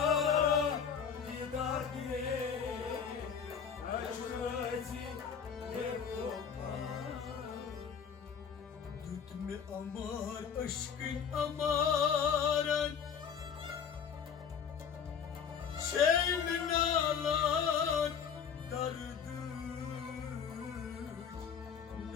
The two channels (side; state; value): right; quieter; 7.1 dB